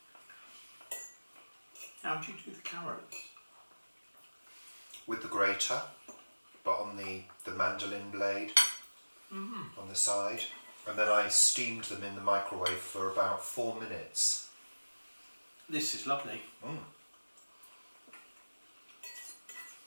How do you do the carrots? With the grater, but on the mandolin blade on the side. And then I steamed them in the microwave for about 4 minutes. This is lovely.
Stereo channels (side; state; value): both; inverted; correlation -1.00